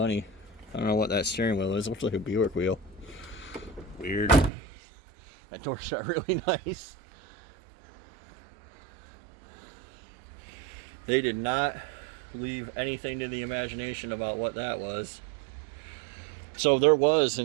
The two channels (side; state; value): left; drops out; at 4.5 s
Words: I don't know what that steering wheel is. It looks like a Buick wheel. Weird. That door shut really nice. They did not leave anything to the imagination about what that was. So there was